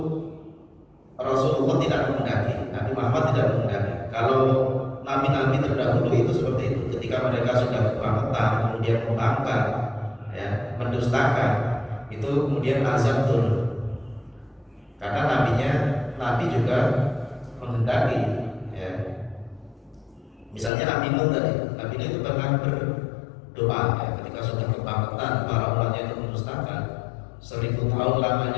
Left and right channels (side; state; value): right; drops out; at 20.7 s